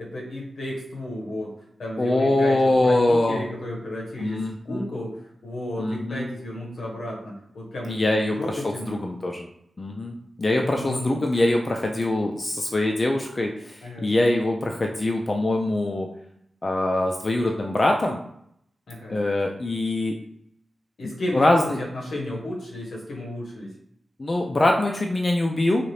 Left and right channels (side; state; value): both; normal; correlation 0.94